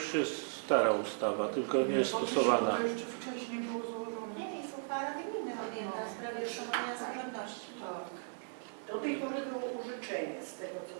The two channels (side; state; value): left; silent; 53 dB below the other